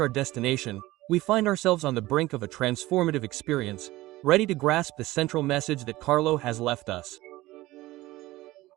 destination, we find ourselves on the brink of a transformative experience, ready to grasp the central message that Carlo has left us.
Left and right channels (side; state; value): left; quieter; 18.0 dB